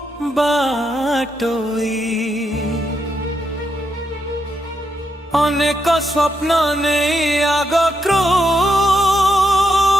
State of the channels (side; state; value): both; normal; correlation 0.81